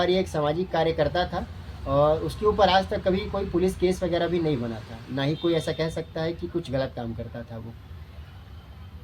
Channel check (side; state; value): both; identical; correlation 1.00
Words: एक सामाजिक कार्यकर्ता था, और उसके ऊपर आज तक कभी कोई पुलिस केस वगैरह भी नहीं बना था, ना ही कोई ऐसा कह सकता है कि कुछ गलत काम करता था वो।